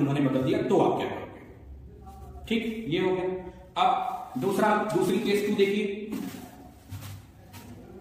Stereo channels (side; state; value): both; identical; correlation 1.00